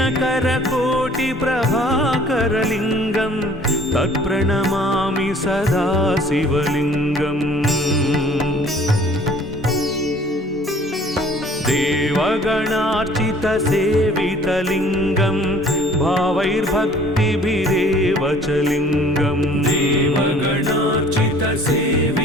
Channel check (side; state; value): both; normal; correlation 0.53